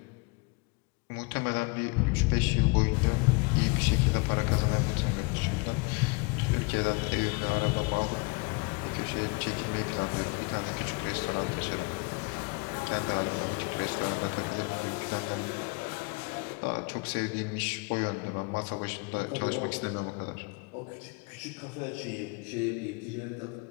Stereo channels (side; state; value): right; quieter; 29.7 dB